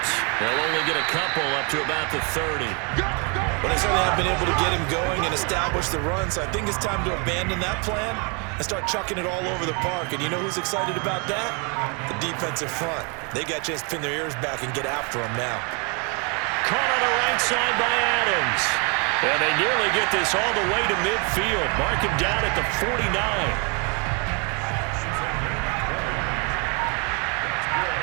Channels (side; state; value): left; quieter; 33.9 dB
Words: They'll only get a couple up to about the 30. But they certainly have been able to get him going and establish the run, so I think it's time to abandon that plan and start chucking it all over the park. And you know who's excited about that? The defensive front. They got a chance to pin their ears back and get after him now. Caught on the right side by Adams. And they nearly get this all the way to midfield. Mark him down at the 49.